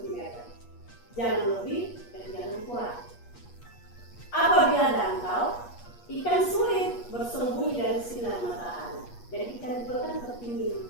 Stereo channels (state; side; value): late; right; 8.4 ms